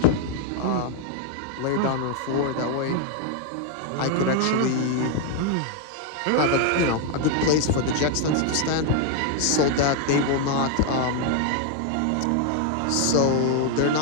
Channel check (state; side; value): different; both; correlation 0.01